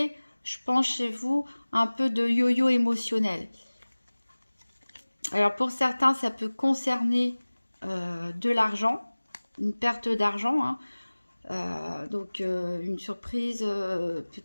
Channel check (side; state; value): both; inverted; correlation -1.00